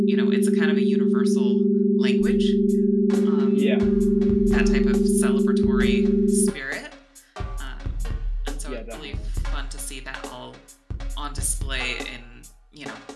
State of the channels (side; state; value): both; identical; correlation 1.00